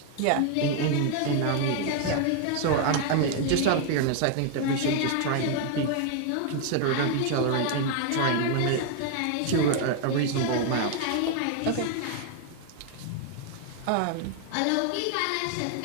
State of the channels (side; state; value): both; different; correlation 0.00